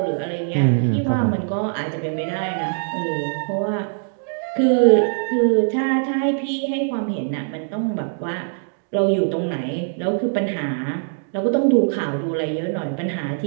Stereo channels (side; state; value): left; silent; digital silence